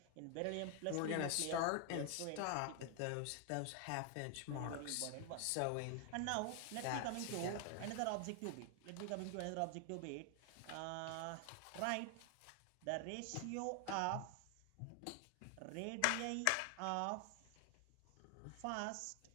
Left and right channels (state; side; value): different; both; correlation 0.00